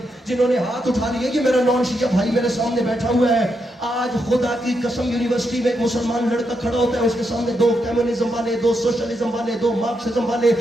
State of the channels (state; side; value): normal; both; correlation 0.82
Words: जिन्होंने हाथ उठा लिए कि मेरा नॉन शिया भाई मेरे सामने बैठा हुआ है। आज खुदा की कसम यूनिवर्सिटी में एक मुसलमान लड़का खड़ा होता है, उसके सामने 2 कम्युनिज्म वाले, 2 सोशलिज्म वाले, 2 मार्क्सिज्म वाले,